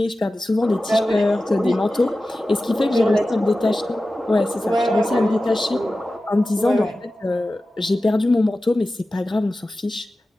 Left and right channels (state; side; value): normal; both; correlation 0.95